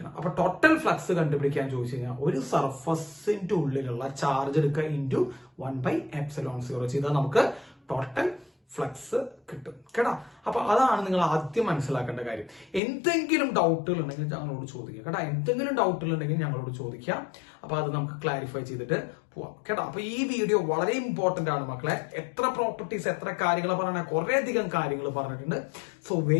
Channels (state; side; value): drops out; right; at 12.8 s